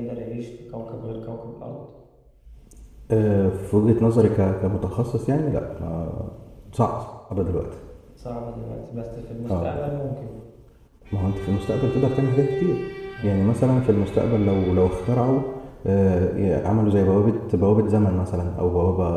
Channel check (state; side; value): identical; both; correlation 1.00